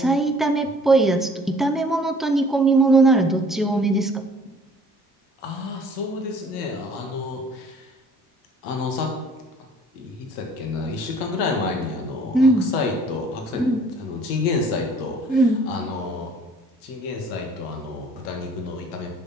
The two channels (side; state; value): both; normal; correlation 0.55